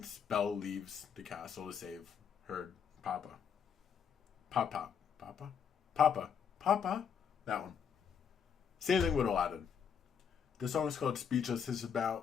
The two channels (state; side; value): quieter; right; 7.3 dB